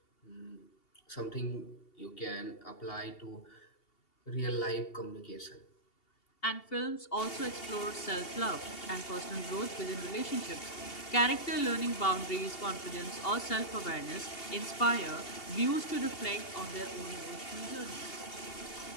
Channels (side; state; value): right; late; 2.8 ms